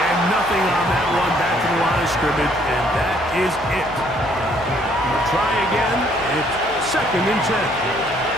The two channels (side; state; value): left; noise; hum, 17 dB below the sound